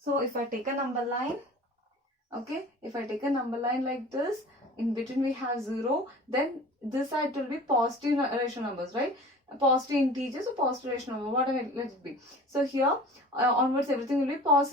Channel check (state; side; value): normal; both; correlation 0.41